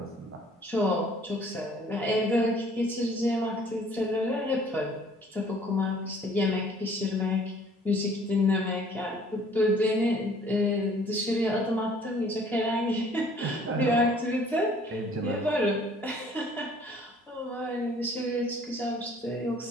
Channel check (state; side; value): normal; both; correlation 0.56